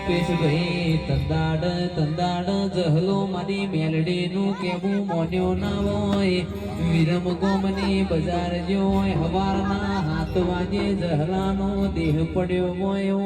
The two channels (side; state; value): both; identical; correlation 1.00